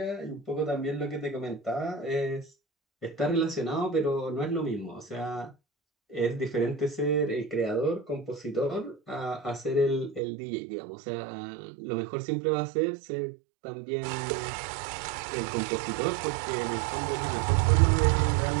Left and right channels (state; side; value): drops out; left; at 10.2 s